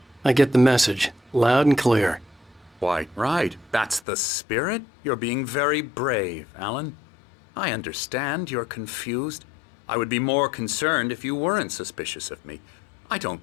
I get the message, loud and clear. Quite right. That's the spirit. You're being very brave, Alan. I understand you're confused. I would be more concerned if you weren't suspicious of me. I don't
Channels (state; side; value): drops out; right; at 4.0 s